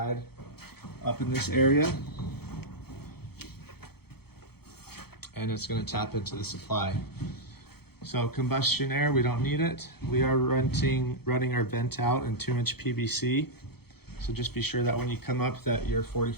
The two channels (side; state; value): right; late; 0.96 ms